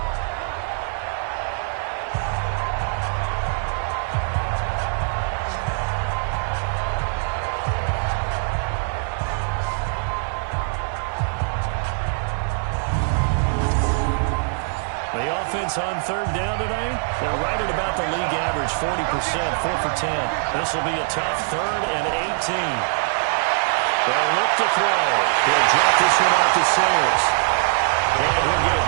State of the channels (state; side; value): silent; left; digital silence